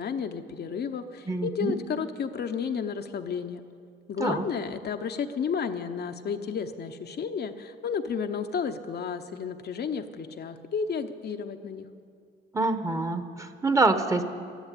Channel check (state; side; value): normal; both; correlation 0.49